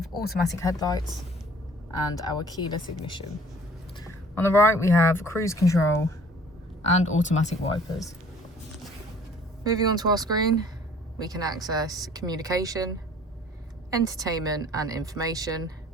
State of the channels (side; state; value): both; normal; correlation 0.53